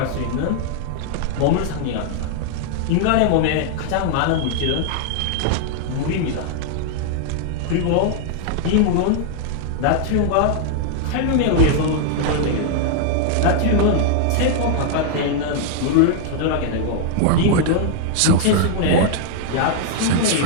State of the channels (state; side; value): different; both; correlation -0.01